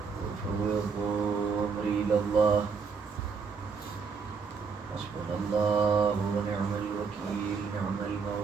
وفوض أمري إلى الله حسبنا الله ونعم الوكيل نعم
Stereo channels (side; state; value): left; quieter; 5.4 dB